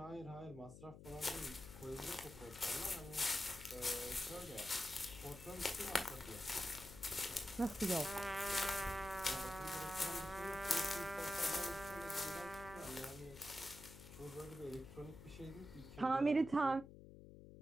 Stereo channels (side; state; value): left; noise; hum, 15 dB below the sound